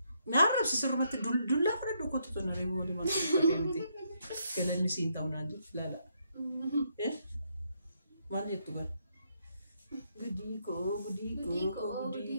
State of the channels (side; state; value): both; inverted; correlation -0.76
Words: Naarrabsi sirrumatti dullaa fudhadhu kottu tona reebu walii maal galanni siif hin ta'u naan jedhu ilaala. Maal jettu gara?